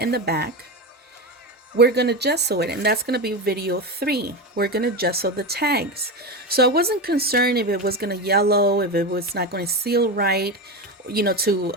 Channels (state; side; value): normal; both; correlation 0.19